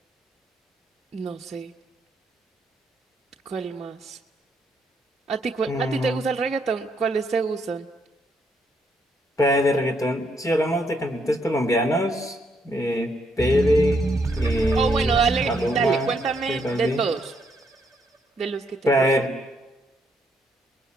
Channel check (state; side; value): normal; both; correlation 0.74